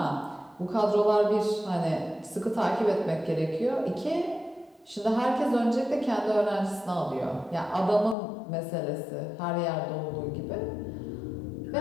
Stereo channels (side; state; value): right; drops out; at 8.2 s